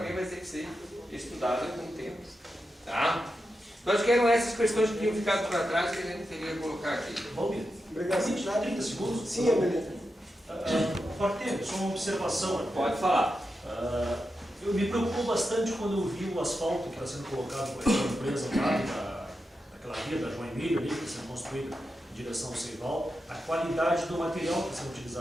vai ter que ser estudada com o tempo. Tá? Então acho que eram essas questões que tinham ficado para trás que a gente teria que colocar aqui. Valmir, Obrigado. 30 segundos? Sim, Amelita. Pode ter, só uma observação. Pode falar. Eu me preocupou bastante quando eu vi o asfalto que está sendo colocado por aquela empresa lá, daquela via da João Emílio ali, que está sendo construída em direção ao Seival, a qualidade do material que está sendo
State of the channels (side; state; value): both; normal; correlation 0.89